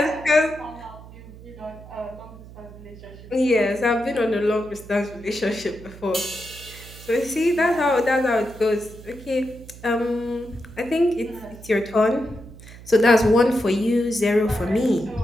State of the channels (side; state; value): right; noise; hum, 17 dB below the sound